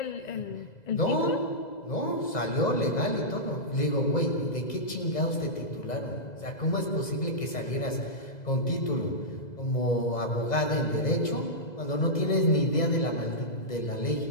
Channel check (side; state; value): right; late; 2.0 ms